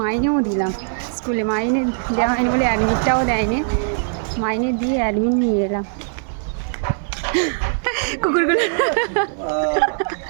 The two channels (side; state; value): left; silent; 59 dB below the other